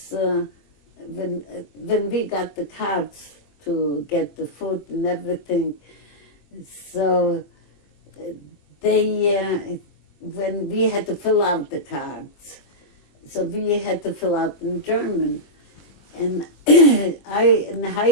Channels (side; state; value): right; late; 21 ms